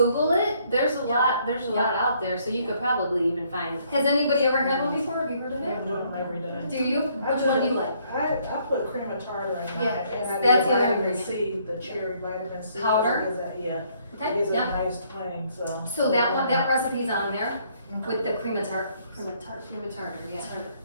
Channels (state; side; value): inverted; both; correlation -0.67